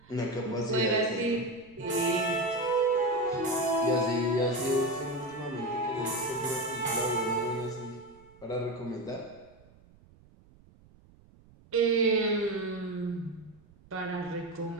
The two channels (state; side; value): noise; right; rumble, 27 dB below the sound